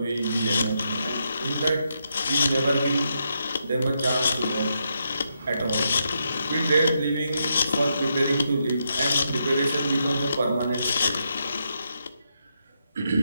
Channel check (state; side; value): inverted; both; correlation -0.81